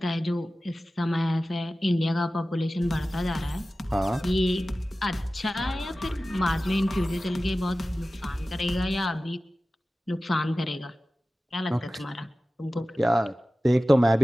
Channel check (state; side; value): normal; both; correlation 0.96